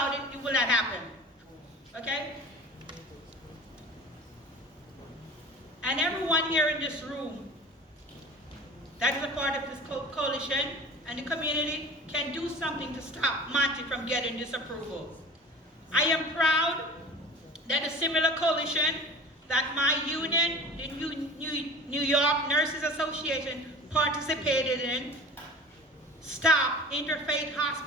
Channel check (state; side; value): normal; both; correlation 0.39